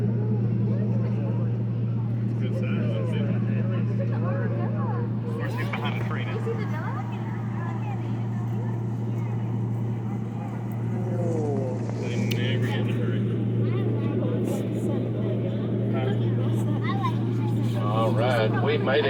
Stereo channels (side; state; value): both; identical; correlation 1.00